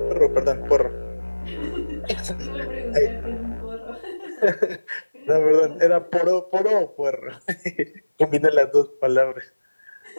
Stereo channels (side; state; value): both; inverted; correlation -1.00